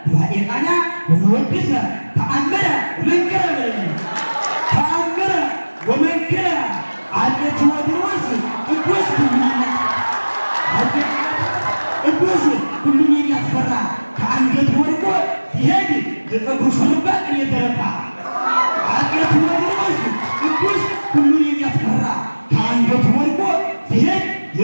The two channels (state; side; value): inverted; both; correlation -1.00